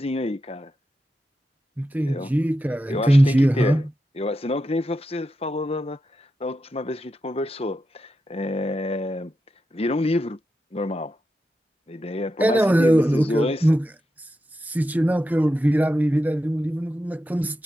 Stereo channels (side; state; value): both; normal; correlation 0.88